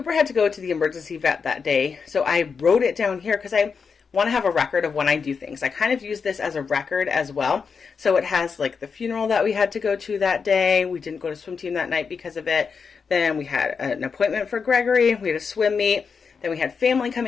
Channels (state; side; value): quieter; right; 5.6 dB